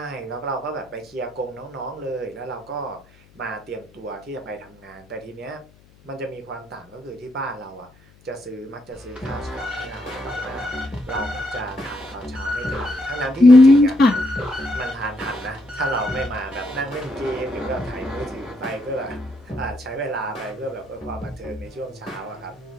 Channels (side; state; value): left; noise; hum, 28 dB below the sound